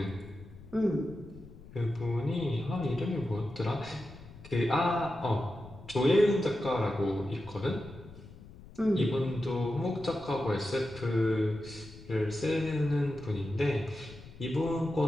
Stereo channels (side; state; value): left; noise; rumble, 18 dB below the sound